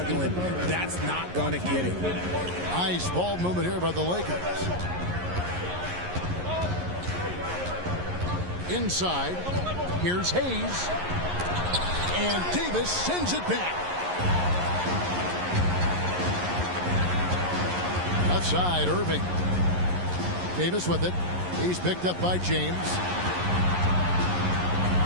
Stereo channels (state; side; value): late; left; 11 ms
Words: That's not going to get it. Nice ball movement here by the Lakers. Inside, here's Hayes. And Davis sends it back. Left side, Irving. Davis with it. He's picked up by James.